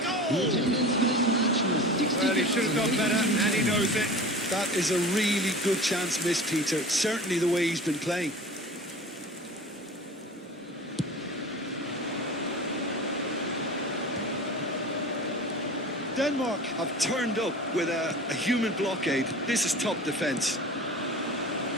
goal! Well, he should have done better, and he knows it. That is a really good chance missed, Peter. Certainly the way he's been playing. Denmark have turned up with a human blockade. This is top defence.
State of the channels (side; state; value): both; normal; correlation 0.37